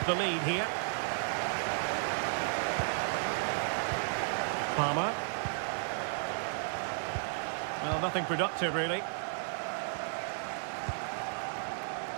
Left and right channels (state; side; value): silent; left; digital silence